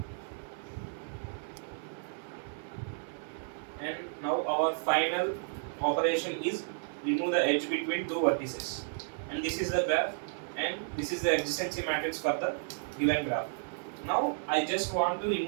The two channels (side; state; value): left; silent; digital silence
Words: And now our final operation is remove the edge between two vertices. And this is the graph, and this is the adjacency matrix for the given graph. Now I just want to